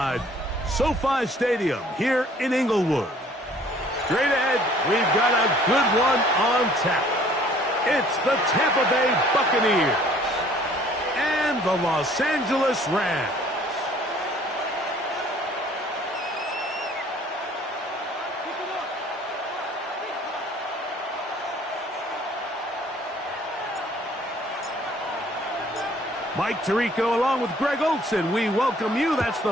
SoFi Stadium here in Inglewood. Straight ahead, we've got a good one on tap. It's the Tampa Bay Buccaneers and the Los Angeles Rams. Mike Tirico along with Greg Olson. We welcome you. That's the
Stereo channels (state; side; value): normal; both; correlation 0.56